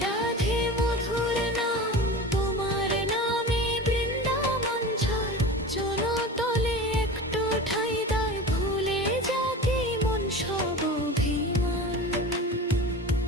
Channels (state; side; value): normal; both; correlation 0.32